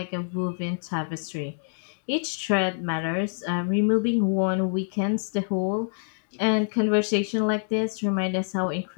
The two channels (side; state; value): right; silent; digital silence